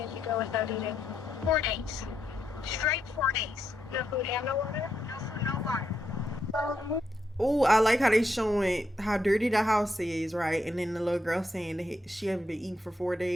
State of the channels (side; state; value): both; normal; correlation 0.80